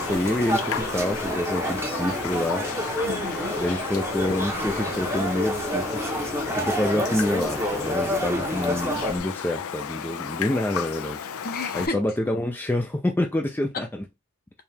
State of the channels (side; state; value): both; normal; correlation 0.66